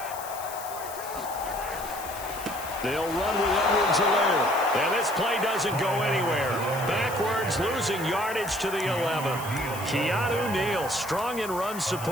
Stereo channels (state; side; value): noise; left; hiss, 13 dB below the sound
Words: They'll run with Edwards-Helaire. And this play doesn't go anywhere. Backwards, losing yardage to the 11. Keanu Neal, strong in run